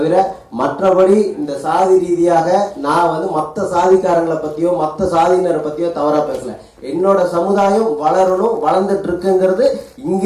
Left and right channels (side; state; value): both; identical; correlation 1.00